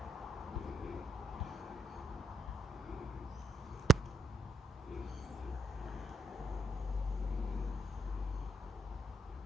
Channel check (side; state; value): both; normal; correlation 0.74